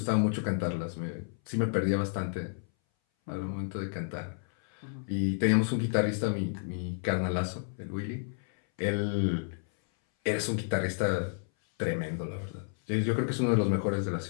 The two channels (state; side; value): silent; right; 57 dB below the other